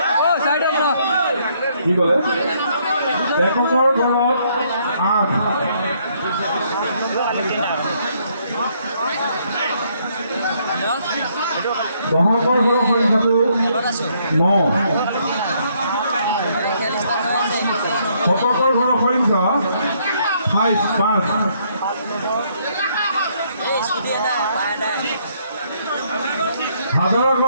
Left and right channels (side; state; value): both; inverted; correlation -0.69